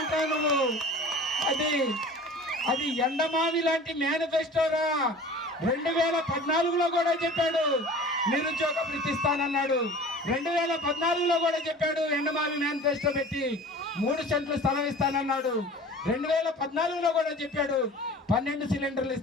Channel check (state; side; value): normal; both; correlation 0.41